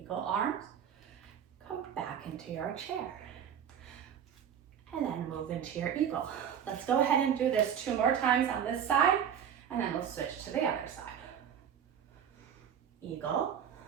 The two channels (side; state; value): left; quieter; 8.5 dB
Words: arms. Come back into your chair. And then move into your eagle. Let's go ahead and do this 2 more times on this side, and then we'll switch to the other side. Eagle